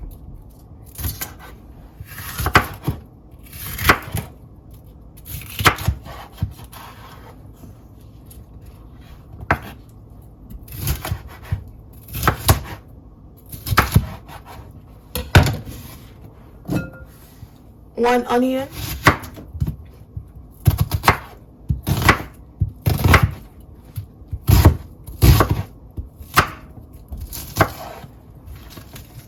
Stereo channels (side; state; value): both; identical; correlation 1.00